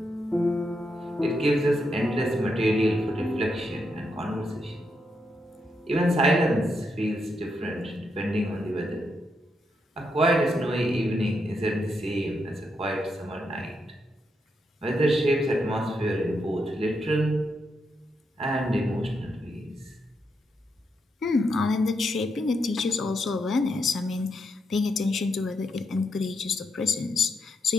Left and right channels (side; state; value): both; normal; correlation 0.82